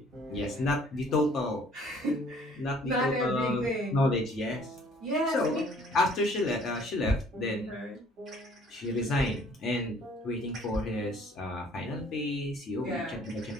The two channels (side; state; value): both; normal; correlation 0.57